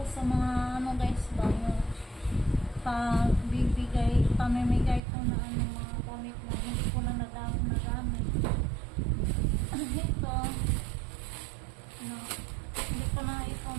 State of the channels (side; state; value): left; drops out; at 5.0 s